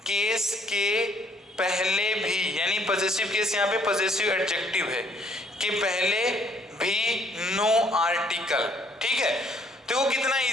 केस के पहले भी, यानी पॉजेसिव केस यहाँ पे पॉजेसिव एडजेक्टिव है, के पहले भी नो आर्टिकल। ठीक है, तो कितना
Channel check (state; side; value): normal; both; correlation 0.63